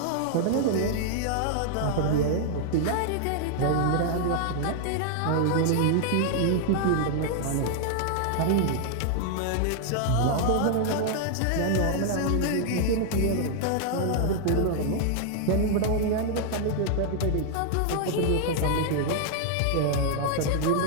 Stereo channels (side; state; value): both; different; correlation 0.00